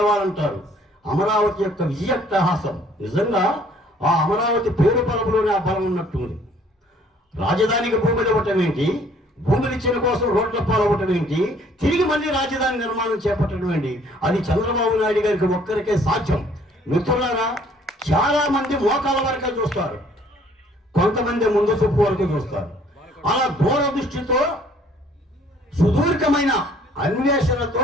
అమరావతి యొక్క విజయాట్టహాసం నిజంగా ఆ అమరావతి పేరు పరపులోనే ఆ బలం ఉన్నట్టుంది. రాజధానికి భూములు ఇవ్వటం ఏంటి, భూములు ఇచ్చిన కోసం రోడ్ల పాలవ్వటం ఏంటి, తిరిగి మళ్ళీ రాజధాని నిర్మాణం చేపట్టడం ఏంటి, అది చంద్రబాబు నాయుడు గారికి ఒక్కరికే సాధ్యం. మిత్రులారా, చాలా మంది మోకాల వరకే చూస్తారు, కొంతమంది ముందు చూపు వరకు చూస్తారు. అలా దూరదృష్టితో సుదీర్ఘమైన అన్వేషణతో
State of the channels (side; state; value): both; normal; correlation 0.59